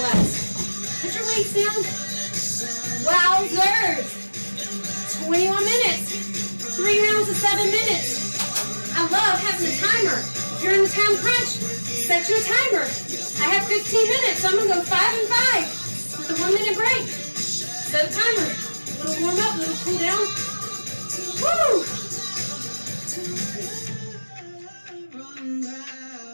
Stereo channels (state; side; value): inverted; both; correlation -1.00